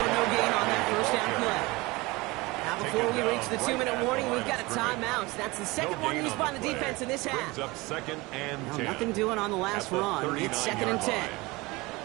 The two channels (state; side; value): quieter; left; 22.8 dB